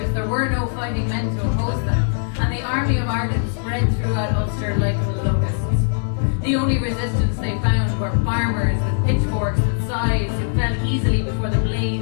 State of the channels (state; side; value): silent; right; 65 dB below the other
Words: there were no fighting men to oppose them, and the army of Ireland spread throughout Ulster like locusts. The only resistance they found were farmers with pitchforks and scythes who fell easily before the